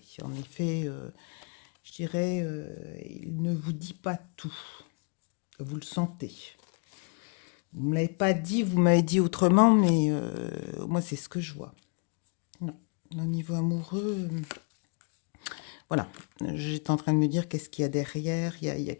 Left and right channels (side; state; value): right; quieter; 37.5 dB